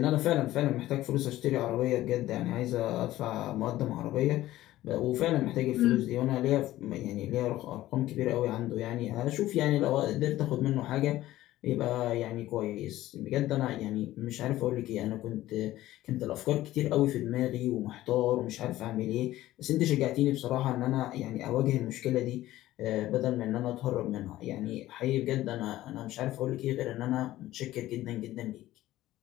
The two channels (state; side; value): quieter; right; 15.3 dB